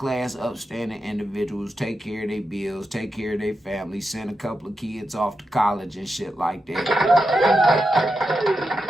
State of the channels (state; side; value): normal; both; correlation 0.88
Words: upstanding individuals, take care of their bills, take care of their family, send a couple of kids off to college and shit like that.